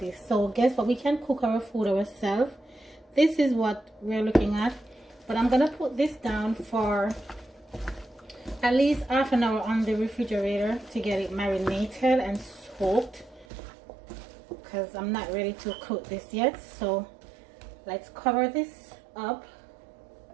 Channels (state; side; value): drops out; left; at 13.5 s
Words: So guess what, we can cook our food ourselves. This is what we're looking at, but I'm gonna put this down for at least half an hour on the refrigerator to get it marinated and soaked, because I'm not ready to cook this yet. So let's cover this up,